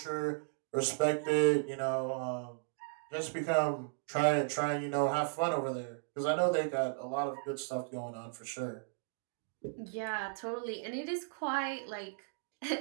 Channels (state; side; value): silent; left; digital silence